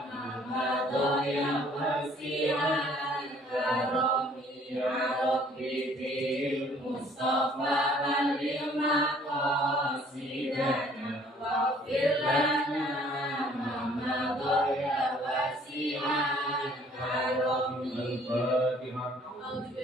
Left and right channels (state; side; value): normal; both; correlation 0.58